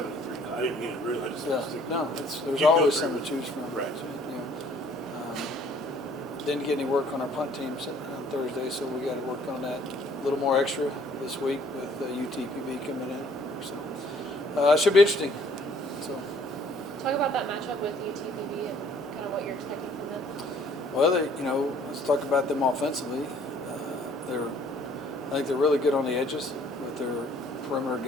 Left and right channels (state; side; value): normal; both; correlation 0.59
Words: I didn't mean it really. I just there's always something to choose from. Right. So, didn't get any work on our punt teams on Thursday, so we got to work on that a little more extra this week with UTPB coming in. So it should be interesting. So talk about that matchup with UTPB and kind of what you're expecting from them. Well, let's talk about them offensively. I think they're really good on the edges with their perimeter